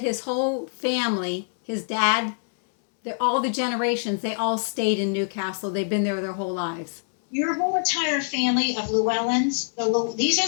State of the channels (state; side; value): silent; right; 62 dB below the other